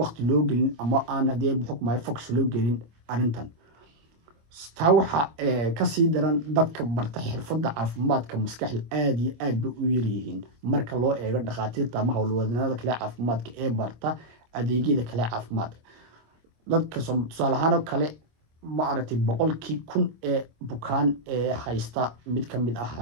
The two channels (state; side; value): late; left; 25 ms